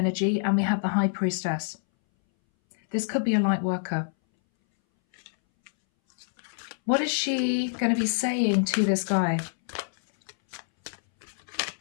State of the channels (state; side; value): silent; right; 61 dB below the other